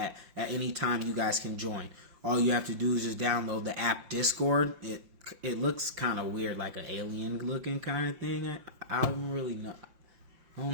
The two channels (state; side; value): late; left; 5.6 ms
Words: at any time you guys can join. All you have to do is just download the app Discord. it looks kind of weird, like an alien looking kind of thing. I don't really know. I